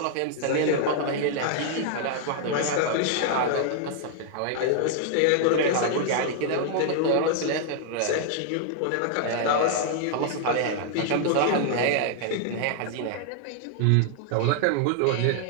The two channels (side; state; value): both; different; correlation 0.00